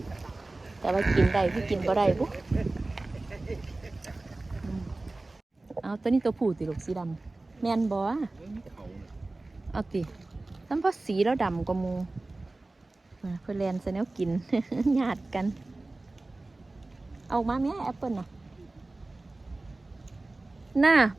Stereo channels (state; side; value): quieter; left; 3.0 dB